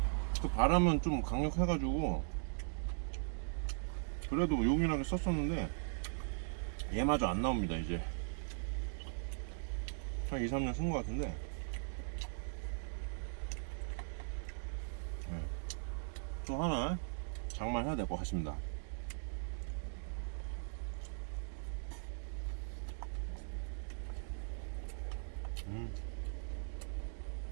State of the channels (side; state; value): left; silent; digital silence